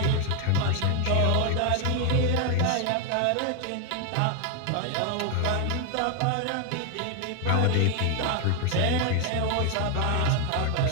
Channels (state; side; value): different; both; correlation 0.00